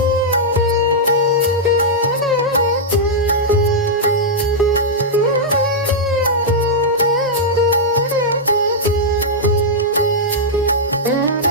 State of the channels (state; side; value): normal; both; correlation -0.08